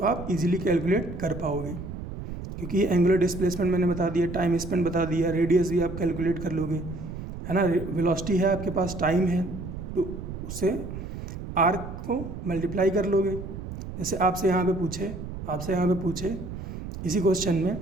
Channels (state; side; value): noise; right; rumble, 9 dB below the sound